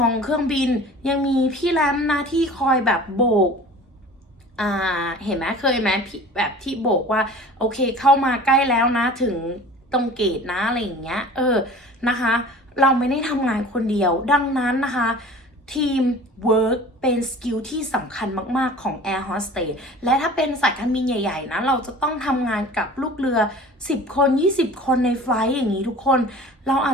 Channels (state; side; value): normal; both; correlation 0.42